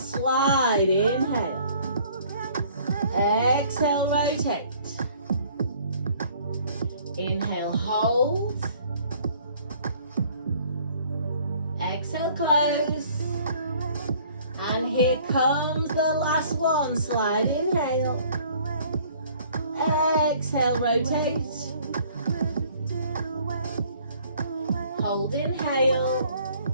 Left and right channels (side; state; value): both; inverted; correlation -0.56